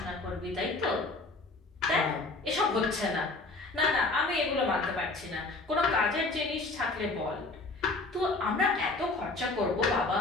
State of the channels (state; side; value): quieter; right; 3.3 dB